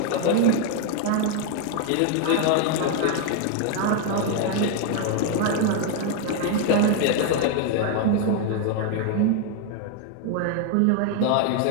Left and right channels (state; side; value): different; both; correlation 0.01